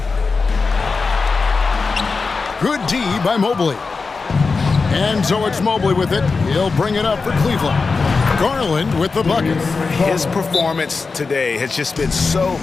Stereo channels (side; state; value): right; quieter; 4.4 dB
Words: Good D by Mobley. And so it's Mobley with it. He'll bring it up for Cleveland. Garland with the bucket. His performance today has just been so